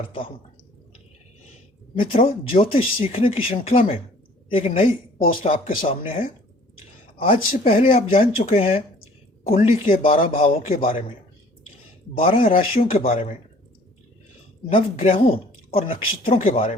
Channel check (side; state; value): both; normal; correlation 0.53